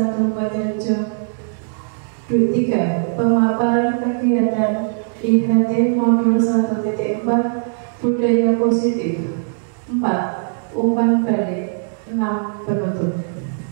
Mejarjo. 3. Pemaparan kegiatan IHT Modul 1.4 Budaya Positif. 4. Umpan balik. 6. Penutup.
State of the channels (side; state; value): left; silent; 66 dB below the other